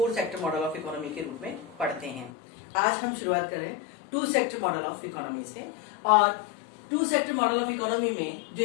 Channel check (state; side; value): drops out; right; at 2.3 s